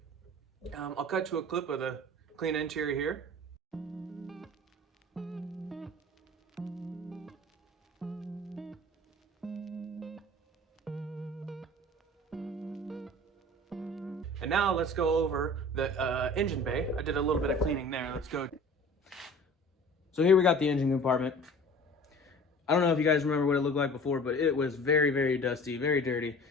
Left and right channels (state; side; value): normal; both; correlation 0.44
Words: I'll cut to a clip of the clean interior here. And now let's go over the engine bay. I did a little bit of cleaning there. Let's go. So here we got the engine compartment. I don't know if you guys remember what it looked like before, but it was very, very dusty, very dirty.